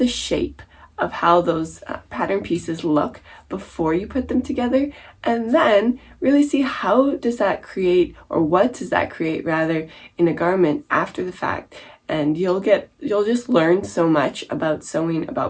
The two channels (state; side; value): identical; both; correlation 1.00